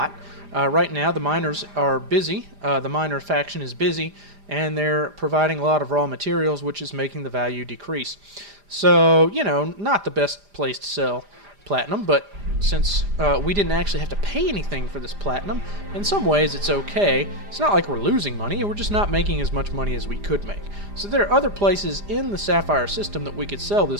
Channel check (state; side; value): late; left; 5.0 ms